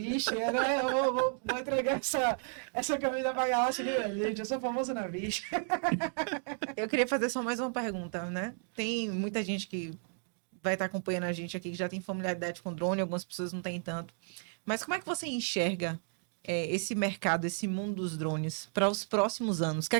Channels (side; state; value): left; silent; 56 dB below the other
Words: né? Eu vou entregar essa camisa pra Galáxia, né, gente? Eu sou famoso na bicha. Eu queria fazer só mais uma pergunta, né? Tem muita gente que vai estar acompanhando a gente aqui que já tem familiaridade com drone, algumas pessoas não têm tanto. Mas como é que você enxerga esse mercado, esse mundo dos drones para os próximos anos? O que é